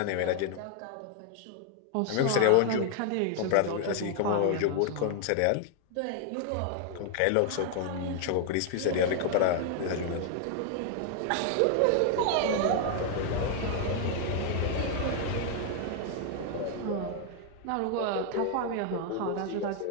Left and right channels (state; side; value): different; both; correlation 0.00